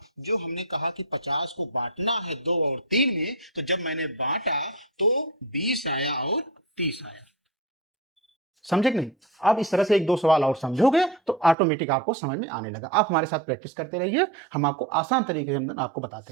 जो हमने कहा कि 50 को बांटना है 2 और 3 में, तो जब मैंने बांटा तो 20 आया और 30 आया। समझे कि नहीं? अब इस तरह से 1-2 सवाल और समझोगे तो ऑटोमेटिक आपको समझ में आने लगा। आप हमारे साथ प्रैक्टिस करते रहिए, हम आपको आसान तरीके से आपको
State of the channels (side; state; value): left; drops out; at 11.6 s